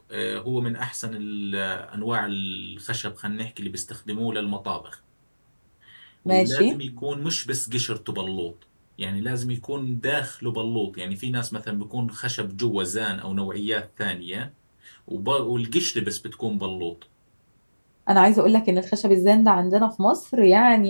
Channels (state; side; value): inverted; both; correlation -1.00